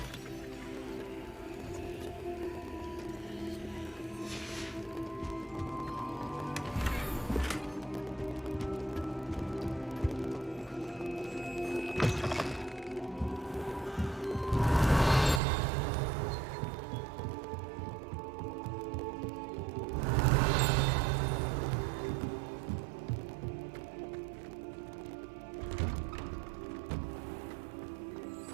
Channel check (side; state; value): left; drops out; at 15.4 s